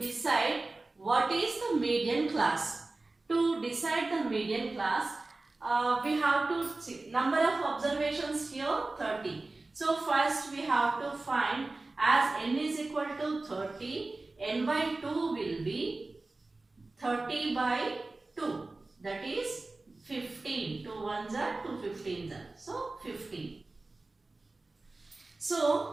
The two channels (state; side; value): quieter; left; 3.2 dB